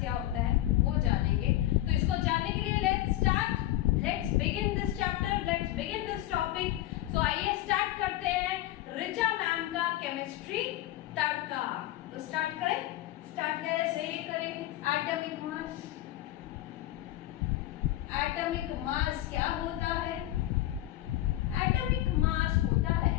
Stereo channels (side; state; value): right; quieter; 14.8 dB